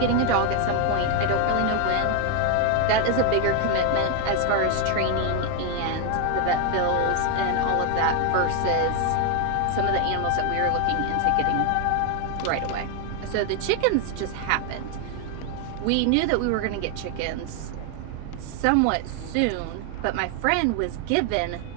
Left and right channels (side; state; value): both; different; correlation 0.00